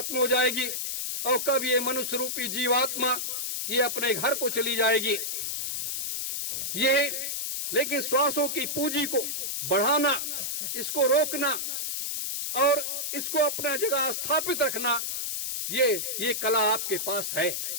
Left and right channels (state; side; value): noise; left; hiss, 2 dB below the sound